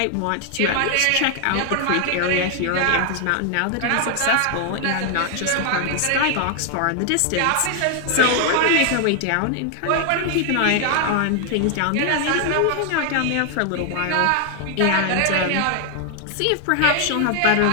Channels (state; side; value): different; both; correlation 0.00